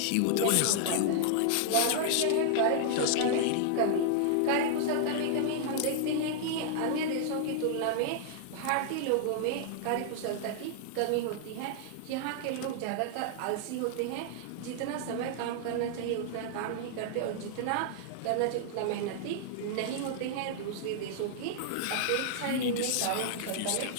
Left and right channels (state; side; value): different; both; correlation -0.01